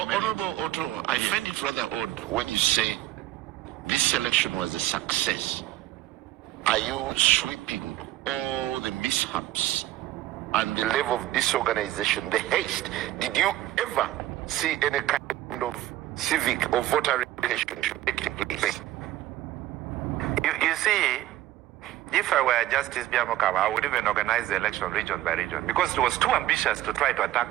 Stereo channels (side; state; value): left; quieter; 14.6 dB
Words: merit. Honorable Otto, I find it rather odd when you say this election was a success. Are you sweeping all the mishaps and the level of disorganization, the haste? Did you ever see any kind of civic or voter relationship taking place? You see, if I were Justice Byabakama, I would even organize the election region by region because it was too ambitious to try to